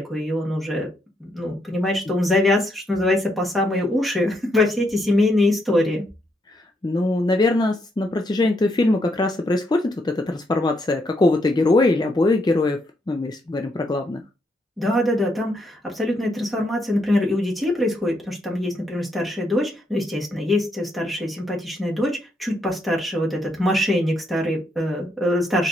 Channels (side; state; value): both; normal; correlation 0.77